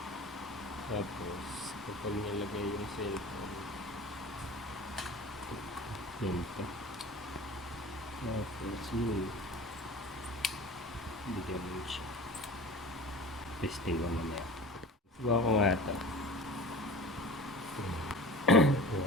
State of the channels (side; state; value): both; normal; correlation 0.38